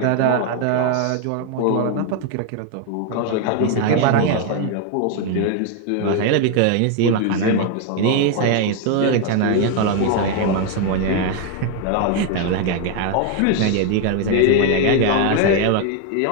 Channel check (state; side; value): different; both; correlation 0.01